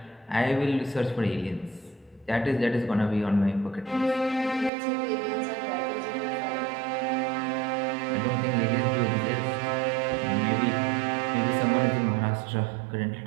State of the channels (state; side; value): drops out; left; at 4.7 s